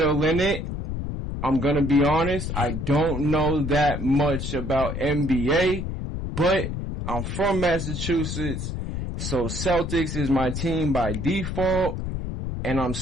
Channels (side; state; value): left; noise; rumble, 4 dB below the sound